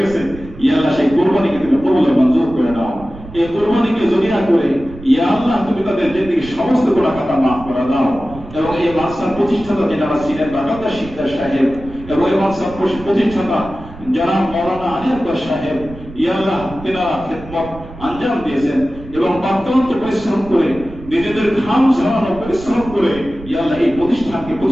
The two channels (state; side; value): noise; right; rumble, 16 dB below the sound